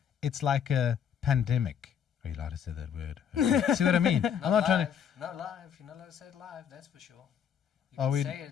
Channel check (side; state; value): right; quieter; 8.2 dB